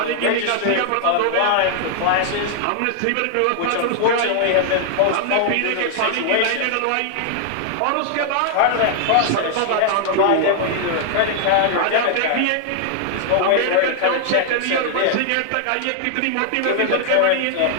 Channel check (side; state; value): both; different; correlation 0.00